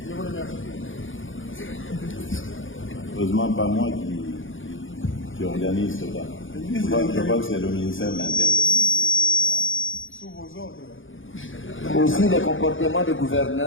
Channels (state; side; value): late; right; 0.57 ms